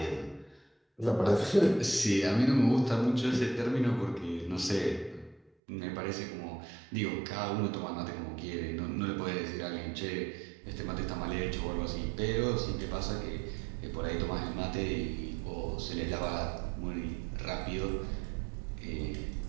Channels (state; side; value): drops out; left; at 5.5 s